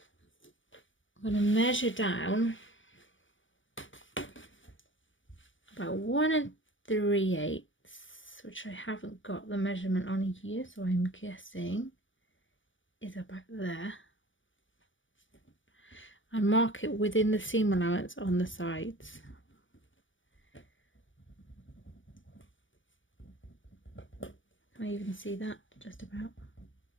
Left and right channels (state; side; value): late; right; 0.56 ms